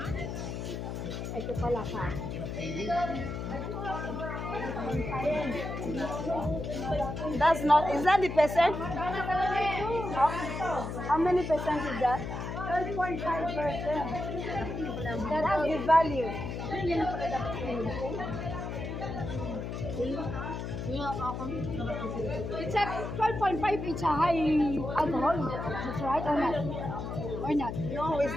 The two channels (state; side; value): noise; left; hum, 5 dB below the sound